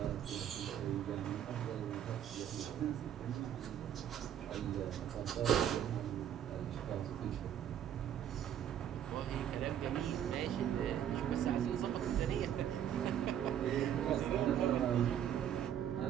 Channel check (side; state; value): left; quieter; 10.0 dB